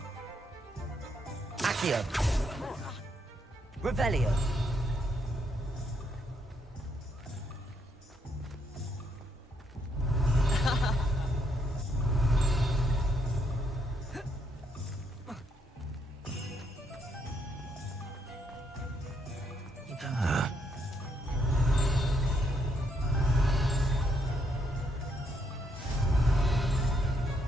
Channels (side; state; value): both; normal; correlation 0.75